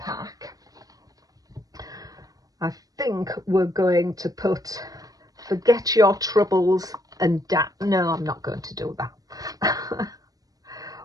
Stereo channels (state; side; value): late; left; 0.18 ms